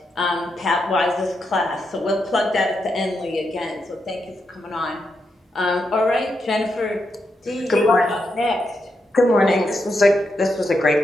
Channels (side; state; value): both; normal; correlation 0.84